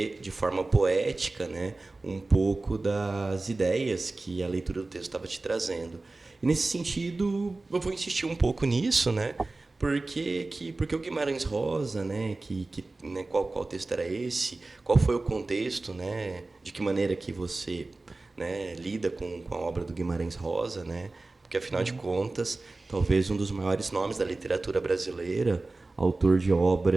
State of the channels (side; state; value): left; quieter; 3.3 dB